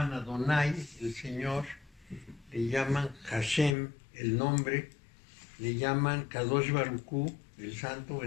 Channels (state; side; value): drops out; right; at 3.8 s